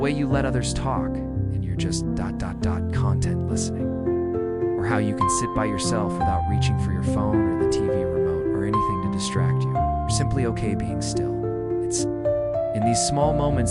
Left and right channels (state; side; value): identical; both; correlation 1.00